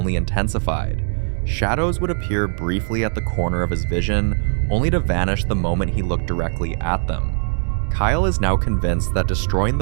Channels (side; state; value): left; silent; digital silence